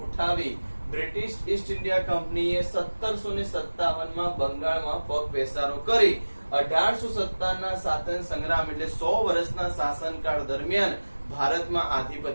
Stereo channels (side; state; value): both; inverted; correlation -1.00